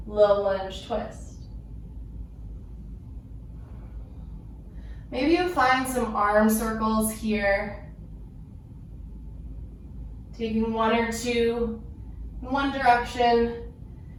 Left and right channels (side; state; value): both; identical; correlation 1.00